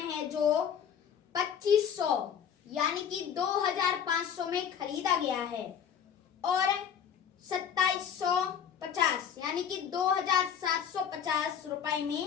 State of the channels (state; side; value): quieter; right; 8.2 dB